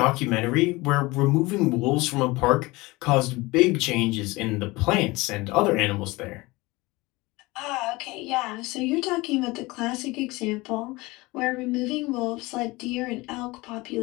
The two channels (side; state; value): right; quieter; 22.2 dB